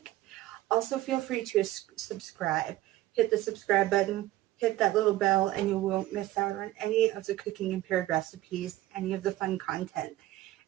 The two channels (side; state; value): left; quieter; 15.9 dB